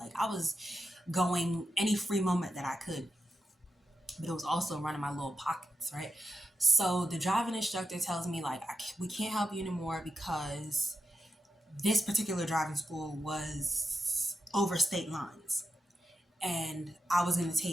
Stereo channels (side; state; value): both; normal; correlation 0.88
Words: I was going any free moment that I could, but it was also running my little pockets, right? So the driving instructor tells me like we can't help you anymore because this particular driving school was over state lines, and I was going to